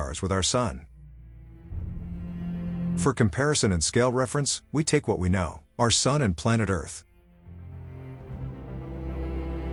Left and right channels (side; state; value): both; identical; correlation 1.00